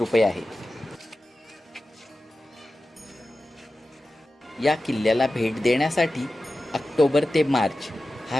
आहे. या किल्ल्याला भेट देण्यासाठी ऑक्टोबर ते मार्च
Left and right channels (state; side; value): normal; both; correlation 0.94